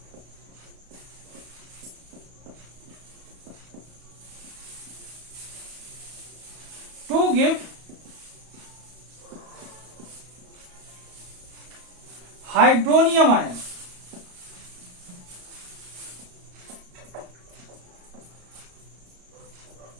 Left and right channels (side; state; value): left; late; 34 ms